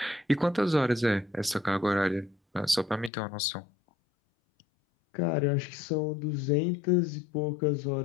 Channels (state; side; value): drops out; right; at 3.1 s